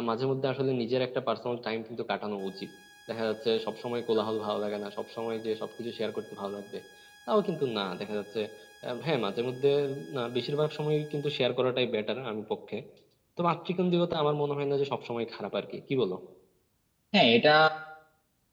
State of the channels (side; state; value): both; identical; correlation 1.00